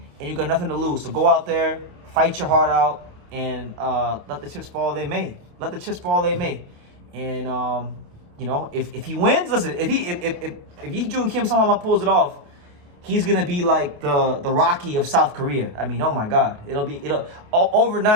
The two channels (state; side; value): late; left; 28 ms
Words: and you got nothing to lose. So go out there, fight your heart out, and let the chips fall they may. Let the chips fall they may. And you know, if he wins, listen, if Yijun Kim somehow pulls it off, he's gonna be like the Rocky of South Korea. I mean, oh my God,